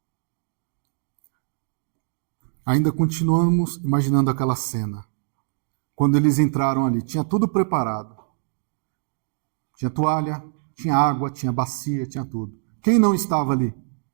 Ainda continuamos imaginando aquela cena. Quando eles entraram ali, tinha tudo preparado. Tinha toalha, tinha água, tinha bacia, tinha tudo. Quem não estava ali?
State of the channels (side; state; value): left; silent; 63 dB below the other